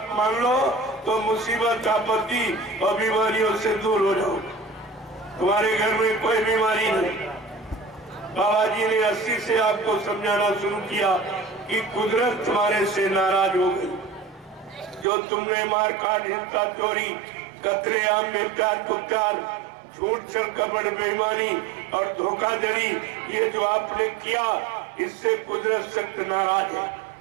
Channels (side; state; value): left; drops out; at 15.1 s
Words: मान लो तो मुसीबत, आपत्ति और बीमारियों से दूर हो जाओ। तुम्हारे घर में कोई बीमारी नहीं। बाबा जी ने 80 से आपको समझाना शुरू किया कि कुदरत तुम्हारे से नाराज हो गई। जो तुमने मार काट, हिंसा, चोरी, कतलेआम, बेप्यार कुप्यार, झूठ, छल, कपट, बेईमानी और धोखाधड़ी, ये जो आपने किया, इससे कुदरत सख्त नाराज है